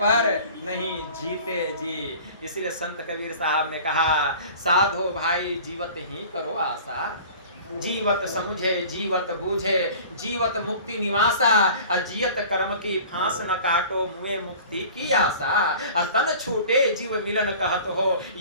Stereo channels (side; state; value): both; inverted; correlation -0.43